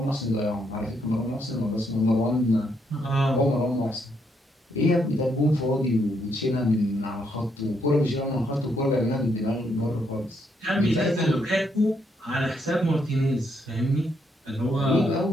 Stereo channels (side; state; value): both; normal; correlation 0.75